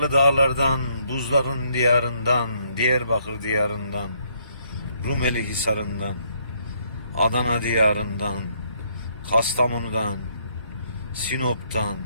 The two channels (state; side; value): inverted; both; correlation -0.70